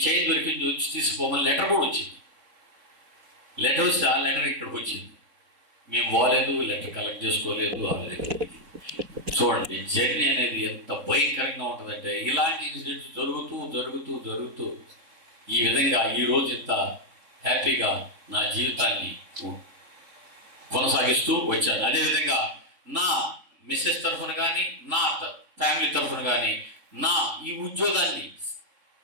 చైన్ దొరికింది వచ్చి తీసుకోమని లెటర్ కూడా వచ్చింది. లెటర్ వస్తే ఆ లెటర్ ఇక్కడికి వచ్చింది. మేము పోలేదు, లెటర్ కలెక్ట్ చేసుకోలేదు. చూడండి జర్నీ అనేది ఎంత భయంకరంగా ఉంటుందంటే, ఇలాంటి ఇన్సిడెంట్స్ జరుగుతూ ఈ విధంగా ఈరోజు ఇంత హ్యాపీగా నా జీవితాన్ని కొనసాగిస్తూ వచ్చాను. అదేవిధంగా నా మిస్సెస్ తరఫున కానీ, నా ఫ్యామిలీ తరఫున కానీ, నా ఈ ఉద్యోగాన్ని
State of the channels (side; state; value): left; late; 3.6 ms